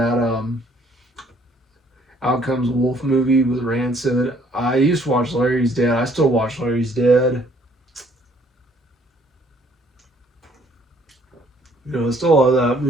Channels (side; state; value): both; normal; correlation 0.62